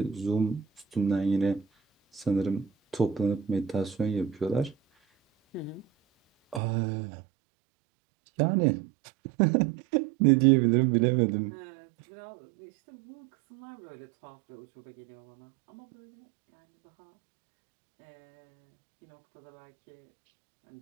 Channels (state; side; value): drops out; left; at 6.6 s